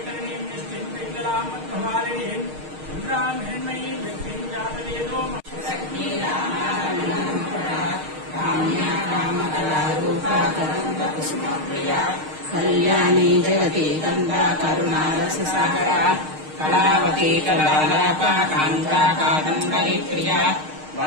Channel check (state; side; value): late; left; 6.5 ms